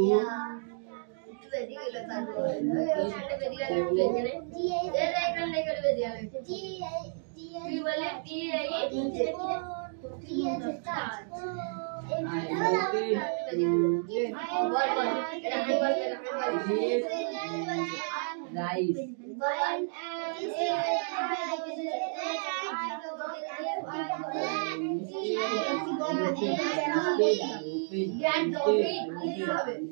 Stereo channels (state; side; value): silent; left; digital silence